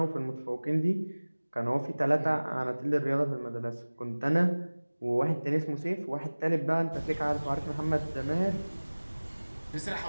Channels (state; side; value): inverted; both; correlation -1.00